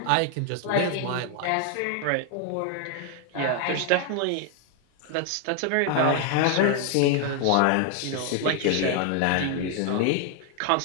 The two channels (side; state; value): both; different; correlation 0.00